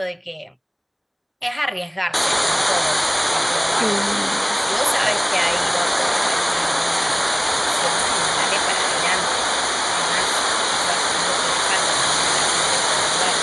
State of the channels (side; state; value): both; identical; correlation 1.00